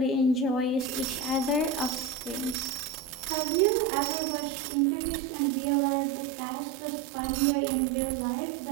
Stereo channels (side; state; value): left; drops out; at 3.3 s